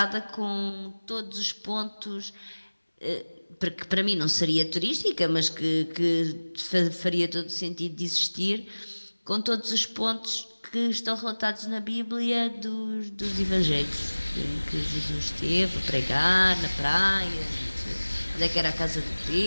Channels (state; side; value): inverted; both; correlation -1.00